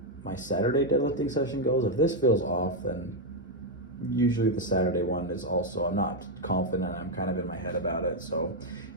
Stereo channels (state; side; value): normal; both; correlation 0.02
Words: my Saturday deadlifting session goes. If this feels off, then usually the Saturday one is also, I'm not confident, I'm kind of in my head about it. So